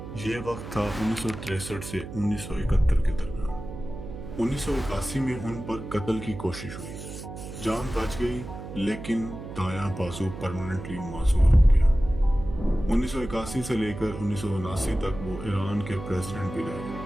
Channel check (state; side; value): noise; right; hum, 10 dB below the sound